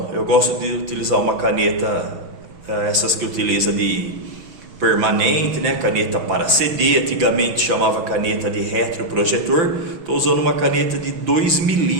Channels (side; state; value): left; late; 5.9 ms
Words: Eu gosto de utilizar uma caneta, essas que utiliza de permanente, né? Caneta para CD, antigamente chamava caneta de retroprojetor. Estou usando uma caneta de 2